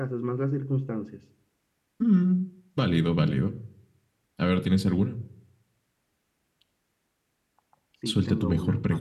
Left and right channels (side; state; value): both; identical; correlation 1.00